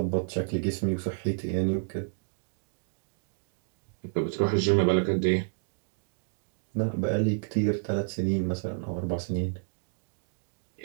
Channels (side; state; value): left; silent; digital silence